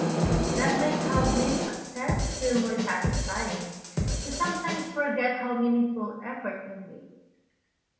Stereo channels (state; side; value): identical; both; correlation 1.00